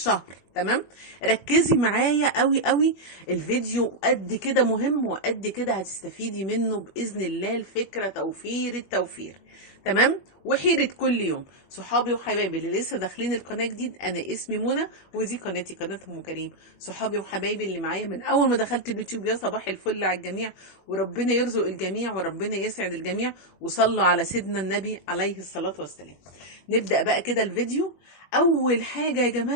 تمام؟ ركزي معايا قوي قوي. الفيديو قد كده مهم وقد كده هتستفيدي منه بإذن الله. الفكرة توفير التوفير، تمام؟ وحيرة كل يوم. صحابي وحبايبي اللي لسه داخلين القناة جديد، أنا اسمي منى ودي قناتي، قناة أم كريم. صحابي وحبايبي اللي معايا من أول ما دخلت اليوتيوب، يا صباح الفل على الجميع. وربنا يرزق الجميع وربنا يسعد الجميع. وصلوا على سيدنا النبي عليه الصلاة والسلام. نبدأ بقى كده الفيديو. أول حاجة يا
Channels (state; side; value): late; right; 21 ms